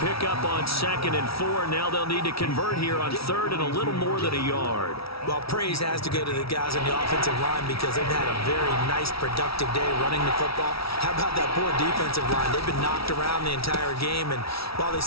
pickup on 2nd and 4. Now they'll need to convert here on 3rd and a little more than a yard. Well, praise has to go to the guys on the offensive line because they've had a very nice, productive day running the football. How about that poor defensive line? They've been knocked around the entire game, and while they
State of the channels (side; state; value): right; late; 0.76 ms